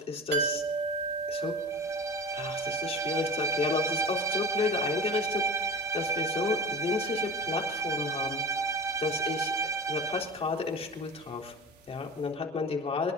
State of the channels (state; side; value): normal; both; correlation 0.33